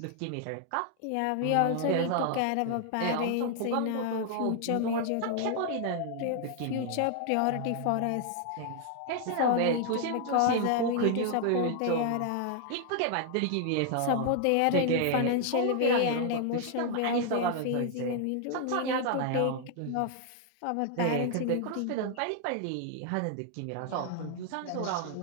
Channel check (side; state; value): both; different; correlation 0.00